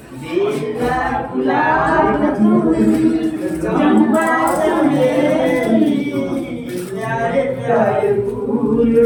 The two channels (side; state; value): both; identical; correlation 1.00